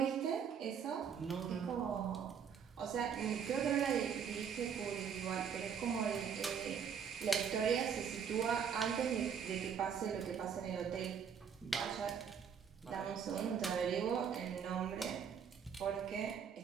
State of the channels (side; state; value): left; quieter; 7.3 dB